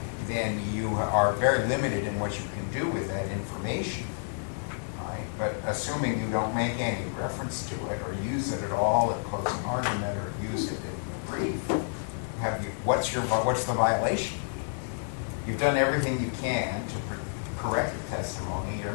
then you are very limited in what you can do with that information. Right? But assuming you don't make any reference to it or use it at all at closing argument or use it in the brief, what's the violation? You've done everything you can to correct the testimony. You're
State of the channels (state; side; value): silent; right; 58 dB below the other